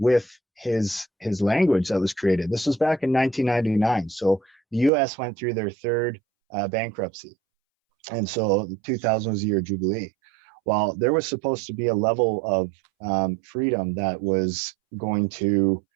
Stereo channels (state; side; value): drops out; left; at 4.9 s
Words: his language that was created. This was back in 1999. So the US went through their third bankruptcy. And so 2000 was the year of Jubilee. Well, there was supposed to be a level of freedom that was going to